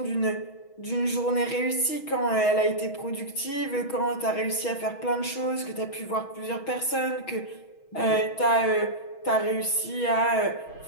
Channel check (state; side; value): late; right; 6.3 ms